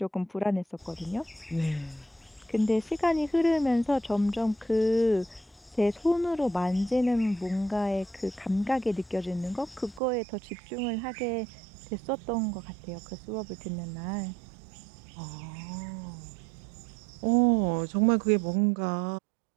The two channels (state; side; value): drops out; left; at 10.0 s